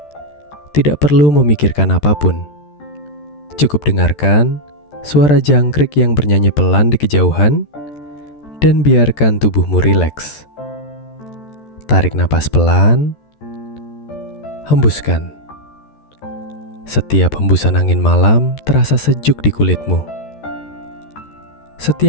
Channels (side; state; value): right; late; 13 ms